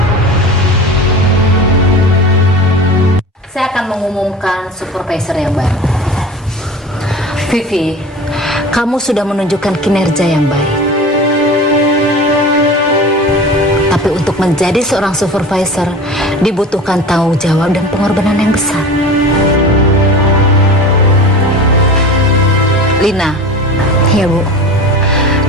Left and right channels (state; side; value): normal; both; correlation 0.35